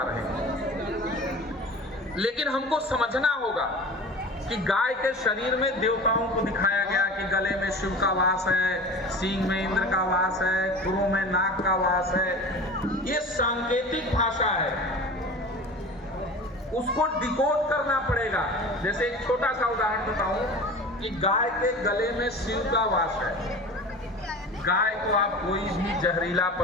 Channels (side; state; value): both; normal; correlation 0.36